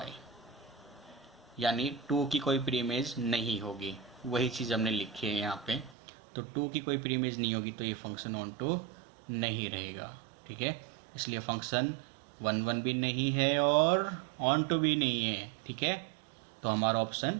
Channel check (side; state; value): left; drops out; at 6.0 s